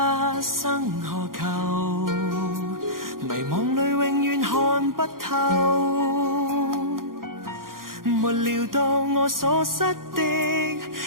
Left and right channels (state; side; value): late; left; 0.91 ms